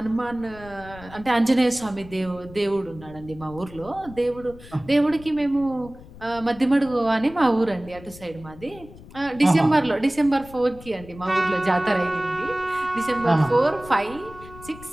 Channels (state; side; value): noise; left; rumble, 18 dB below the sound